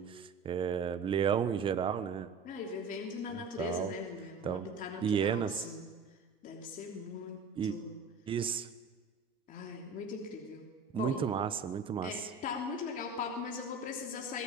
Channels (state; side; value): quieter; left; 4.2 dB